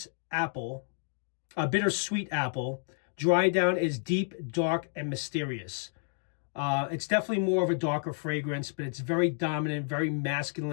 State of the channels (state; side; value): silent; right; digital silence